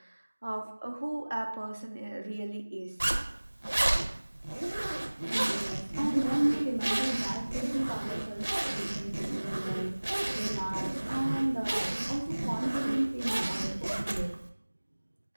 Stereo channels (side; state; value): both; inverted; correlation -1.00